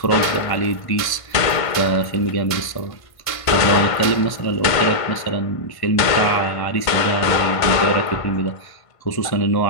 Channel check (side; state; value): right; late; 1.5 ms